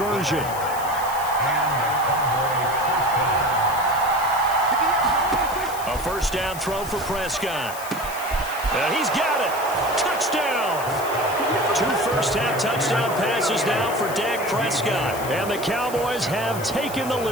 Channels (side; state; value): left; noise; hiss, 12 dB below the sound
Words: A first down throw for Prescott. And he's got it. Touchdown. 2 first-half touchdown passes now for Dak Prescott. And the Cowboys have taken the